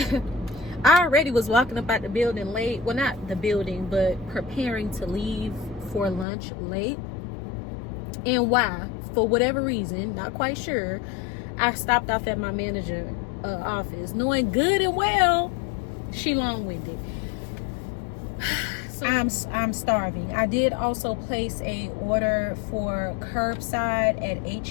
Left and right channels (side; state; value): right; drops out; at 6.2 s